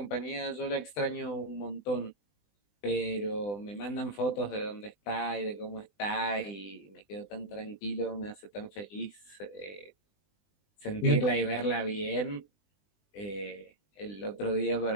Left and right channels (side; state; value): right; late; 20 ms